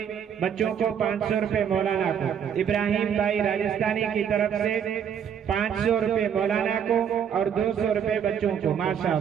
बच्चों को, 500 रुपए मौलाना को, इब्राहिम भाई राजस्थानी की तरफ से 500 रुपए मौलाना को और 200 रुपए बच्चों को।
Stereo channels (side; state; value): left; quieter; 8.2 dB